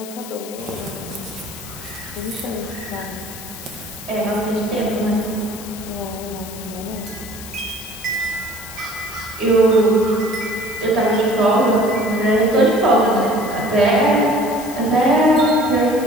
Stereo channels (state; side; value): noise; left; hiss, 14 dB below the sound